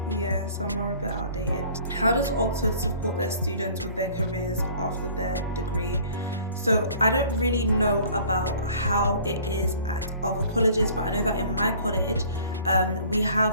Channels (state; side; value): inverted; both; correlation -0.51